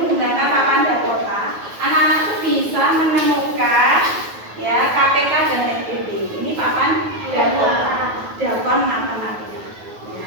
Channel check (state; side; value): late; left; 9.4 ms